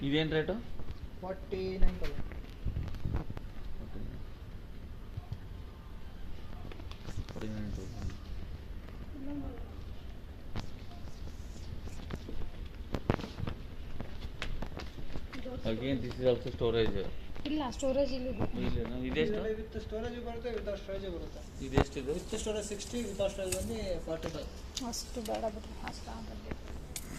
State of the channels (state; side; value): identical; both; correlation 1.00